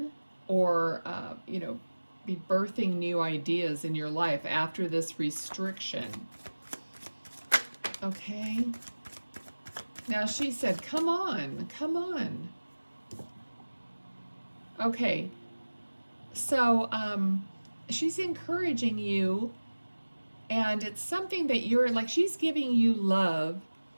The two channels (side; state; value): both; inverted; correlation -1.00